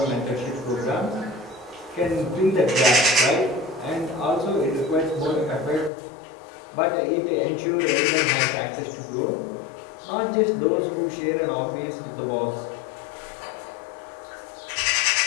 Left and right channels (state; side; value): drops out; right; at 5.9 s